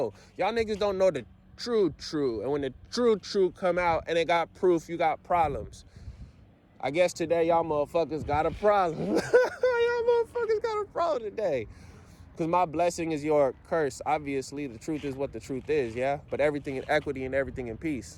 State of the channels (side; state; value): both; identical; correlation 1.00